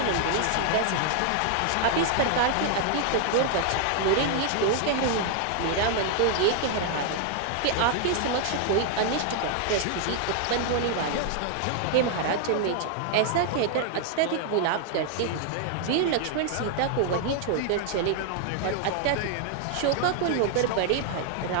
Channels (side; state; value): both; different; correlation 0.00